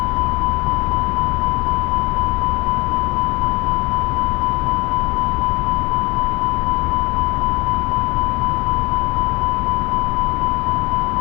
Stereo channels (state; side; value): quieter; right; 23.7 dB